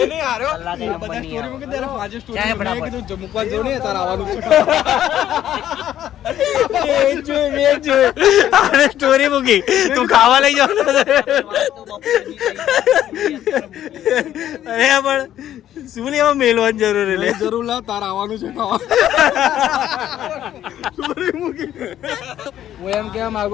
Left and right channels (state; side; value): quieter; right; 11.6 dB